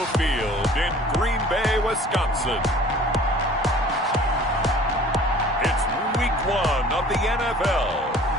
Field in Green Bay, Wisconsin, it's Week 1 of the NFL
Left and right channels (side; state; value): both; normal; correlation 0.49